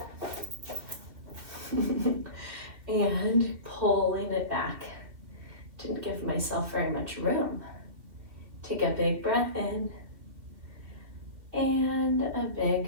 And pulling it back. Didn't give myself very much room. Take a big breath in and a big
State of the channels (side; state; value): left; late; 2.6 ms